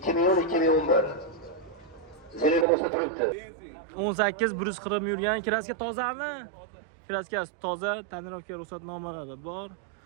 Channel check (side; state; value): left; drops out; at 2.7 s